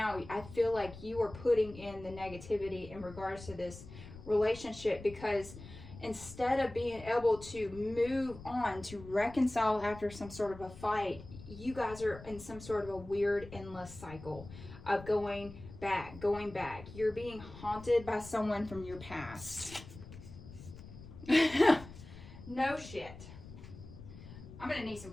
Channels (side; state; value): left; noise; rumble, 15 dB below the sound